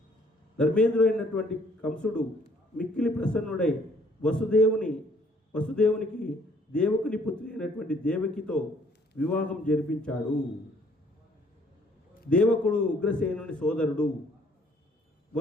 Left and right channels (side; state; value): both; normal; correlation 0.62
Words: ధర్మేంద్రుడైనటువంటి కంసుడు మిక్కిలి ప్రసన్నుడై వసుదేవునికి దేవకుని పుత్రి అయినటువంటి దేవకితో వివాహం జరిపించాడు. దేవకుడు ఉగ్రసేనుని సోదరుడు.